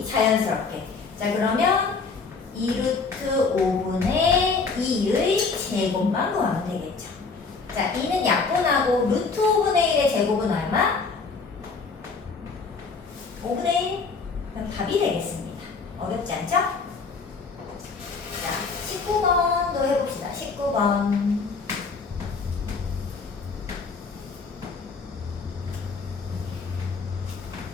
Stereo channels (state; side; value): quieter; right; 4.6 dB